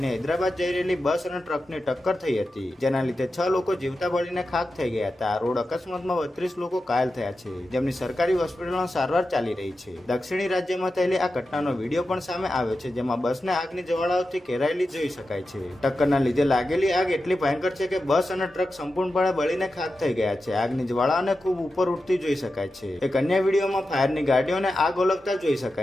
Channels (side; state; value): both; normal; correlation 0.91